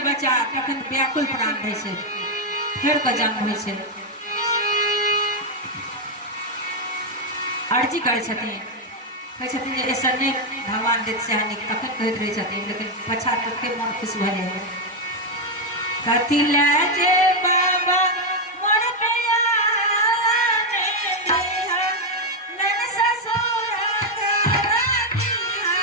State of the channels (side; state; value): both; normal; correlation 0.03